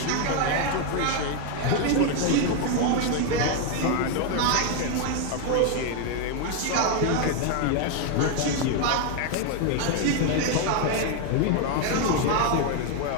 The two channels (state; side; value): different; both; correlation 0.01